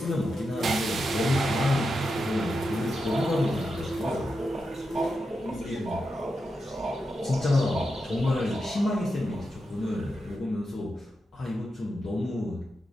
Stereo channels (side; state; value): both; normal; correlation 0.87